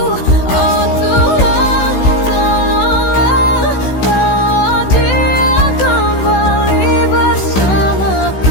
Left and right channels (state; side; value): late; right; 16 ms